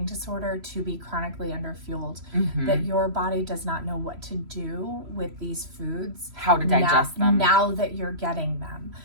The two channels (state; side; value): late; left; 3.0 ms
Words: disorder to be chronically underfueled, that your body does not know what to do with these foods, how to digest them now that you're getting them.